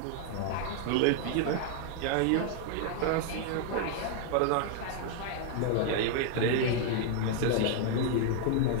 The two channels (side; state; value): both; different; correlation 0.00